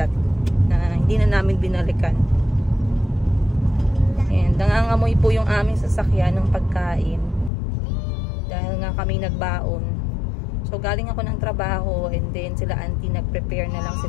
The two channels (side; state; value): right; drops out; at 7.5 s